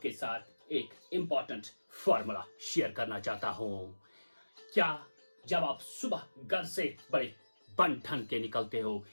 साथ एक इम्पॉर्टेंट फॉर्मूला शेयर करना चाहता हूं। क्या जब आप सुबह घर से बड़े बन ठन के निकलते हो,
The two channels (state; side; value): inverted; both; correlation -1.00